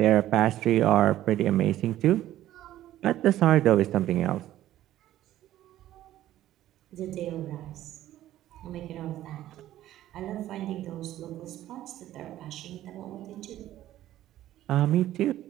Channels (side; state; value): left; quieter; 13.5 dB